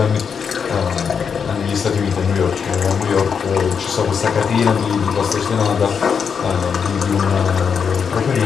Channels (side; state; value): right; quieter; 6.5 dB